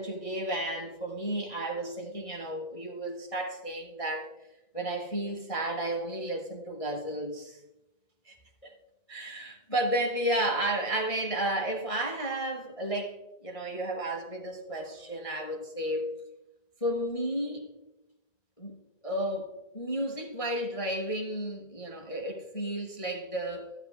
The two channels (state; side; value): late; right; 1.6 ms